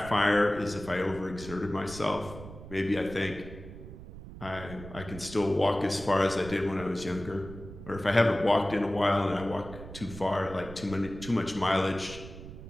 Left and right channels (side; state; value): right; noise; rumble, 13 dB below the sound